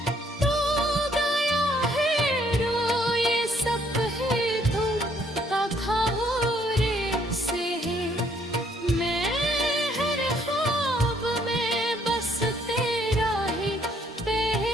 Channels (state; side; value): normal; both; correlation 0.67